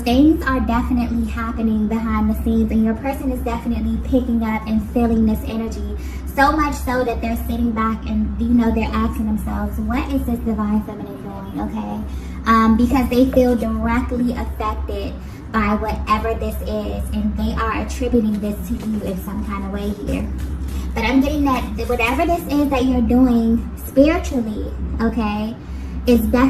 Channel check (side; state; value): both; identical; correlation 1.00